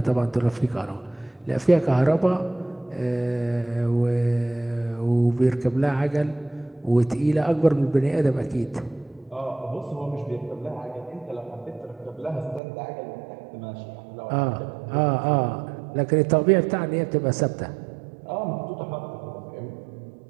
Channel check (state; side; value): drops out; left; at 12.6 s